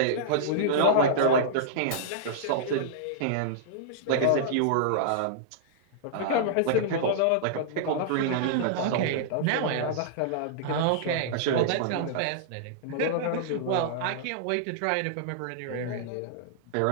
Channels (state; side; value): different; both; correlation -0.02